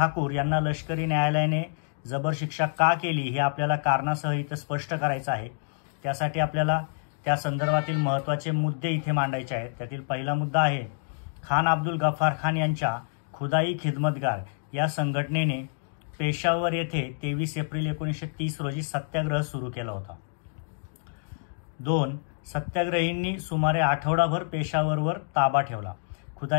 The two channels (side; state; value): right; silent; digital silence